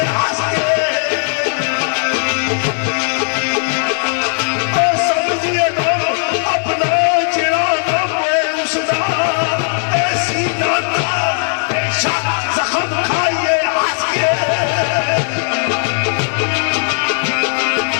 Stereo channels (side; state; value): right; silent; digital silence